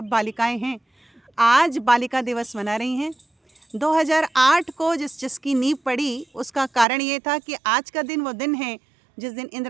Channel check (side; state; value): left; drops out; at 6.9 s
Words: बालिकाएं हैं, आज बालिका दिवस मना रही हैं। 2008 को जिसकी नींव पड़ी, उसका कारण ये था कि आज का दिन वो दिन है जिस दिन